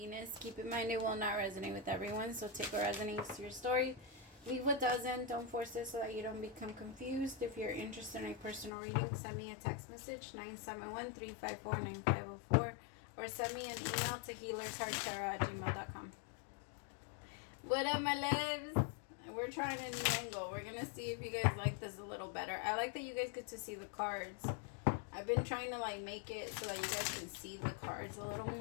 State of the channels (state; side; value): drops out; right; at 8.7 s